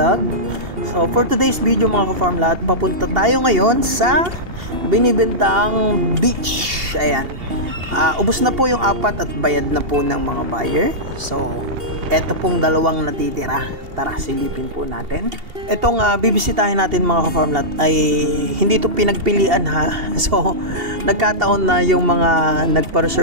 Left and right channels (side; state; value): left; late; 2.8 ms